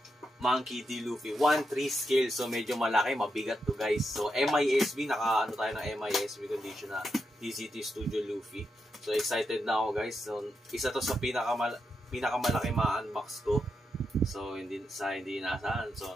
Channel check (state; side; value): normal; both; correlation 0.85